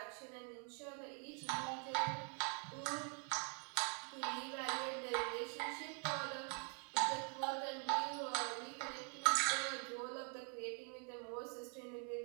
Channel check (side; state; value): left; quieter; 39.8 dB